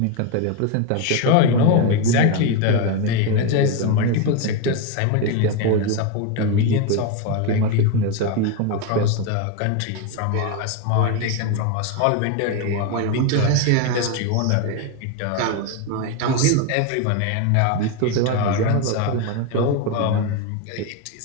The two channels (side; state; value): both; different; correlation 0.02